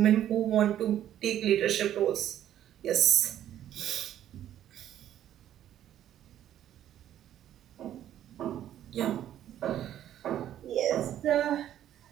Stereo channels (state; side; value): quieter; left; 11.4 dB